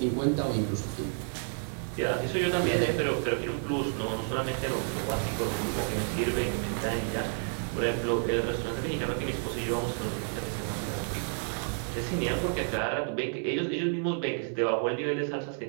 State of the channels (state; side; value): silent; left; 58 dB below the other